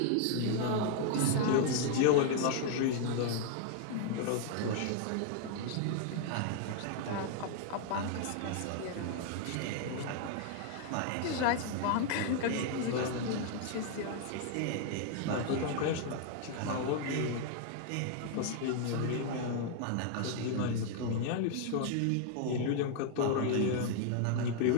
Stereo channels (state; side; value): different; both; correlation 0.00